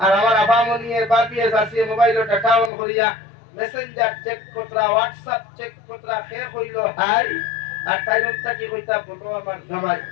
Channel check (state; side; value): drops out; right; at 2.7 s